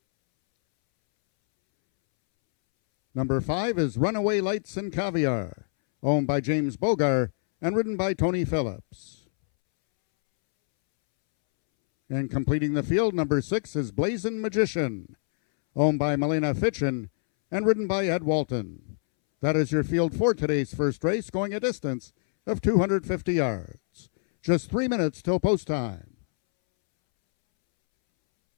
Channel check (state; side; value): silent; right; 61 dB below the other